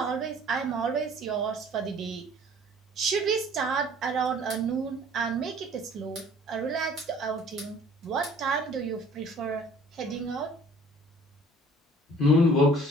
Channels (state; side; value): normal; both; correlation 0.52